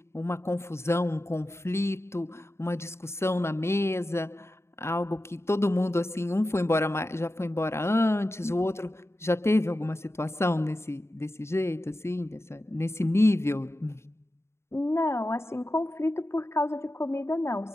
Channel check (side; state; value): right; late; 0.13 ms